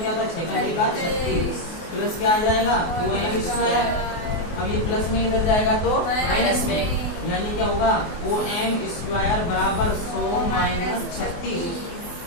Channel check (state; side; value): late; right; 24 ms